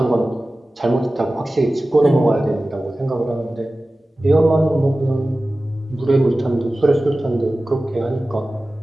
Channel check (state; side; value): normal; both; correlation 0.96